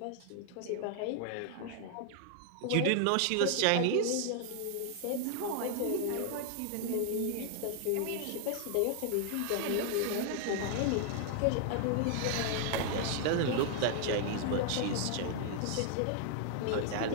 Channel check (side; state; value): both; different; correlation 0.00